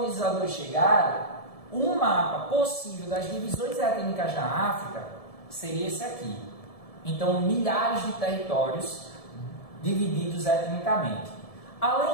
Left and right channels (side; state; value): right; late; 1.7 ms